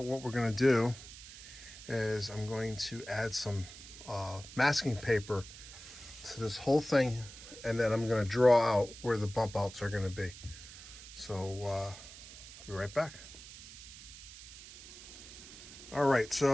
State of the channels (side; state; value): right; noise; hiss, 15 dB below the sound